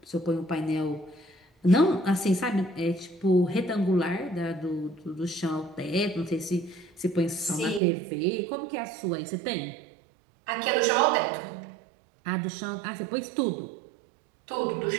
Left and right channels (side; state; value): left; drops out; at 7.8 s